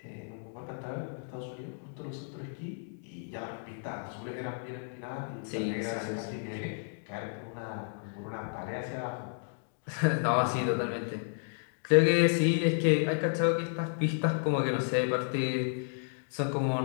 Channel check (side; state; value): right; silent; digital silence